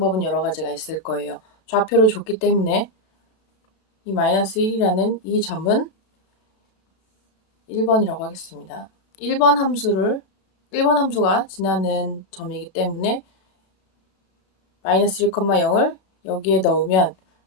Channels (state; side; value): late; right; 32 ms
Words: 여러 가지가 있을 거예요. 좌표를 줬기 때문에 이 마이너스 1이라는 이 점은 1번이라고 하겠습니다. 1번 함수가 지나는 점이기 때문에 마이너스 1,0을 여기에 넣으면